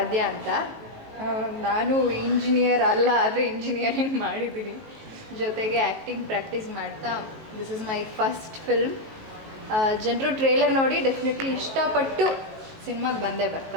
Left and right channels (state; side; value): late; left; 19 ms